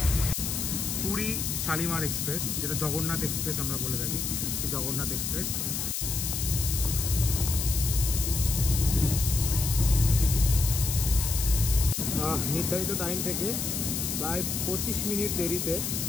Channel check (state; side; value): noise; left; hiss, 2 dB below the sound